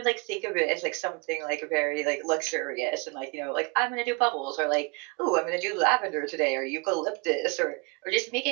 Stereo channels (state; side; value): quieter; left; 29.7 dB